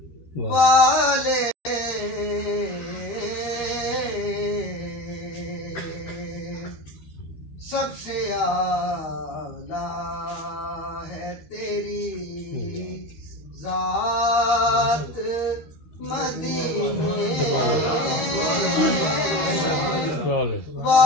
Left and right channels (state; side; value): late; right; 13 ms